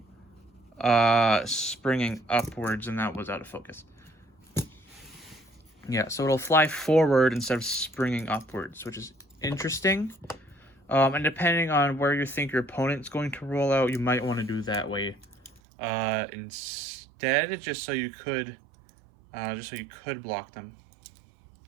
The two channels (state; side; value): drops out; left; at 15.6 s